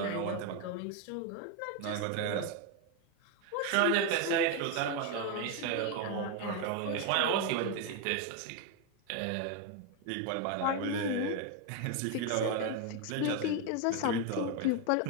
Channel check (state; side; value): different; both; correlation 0.01